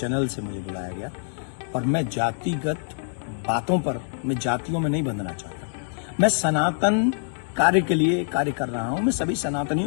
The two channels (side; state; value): right; silent; digital silence